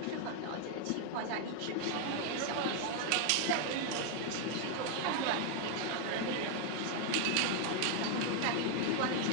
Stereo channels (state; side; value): different; both; correlation 0.00